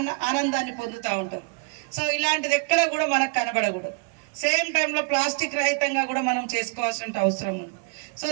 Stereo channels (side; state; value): left; quieter; 33.6 dB